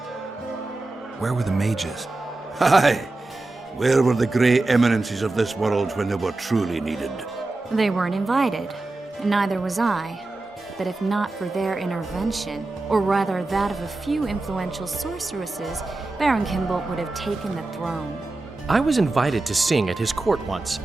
Where were the mages? Aye. Where were the grey eminences of this world when they were truly needed? They weren't invited, and neither was I. But if not for their intervention, or rather that of a few influential sorceresses, Baron Kimbolt would have taken the throne. I was invited to sing at his court once.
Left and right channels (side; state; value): left; quieter; 3.1 dB